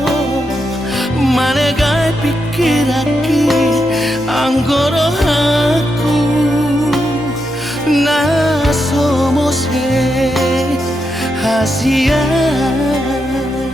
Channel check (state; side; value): normal; both; correlation 0.84